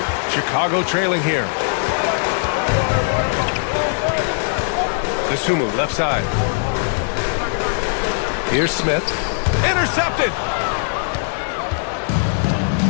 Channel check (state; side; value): silent; right; digital silence